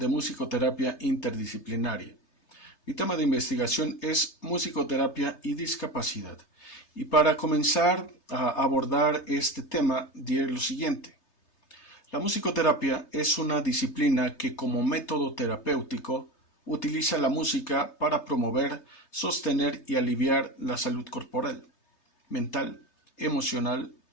Musicoterapia Interdisciplinaria. Mi tema de investigación es musicoterapia y discapacidad. Y para comenzar a abordar este tema, diré lo siguiente. La musicoterapia es una disciplina que como método terapéutico utiliza la música para promover, sostener y aliviar la salud corporal, mental, emocional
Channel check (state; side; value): late; right; 3.3 ms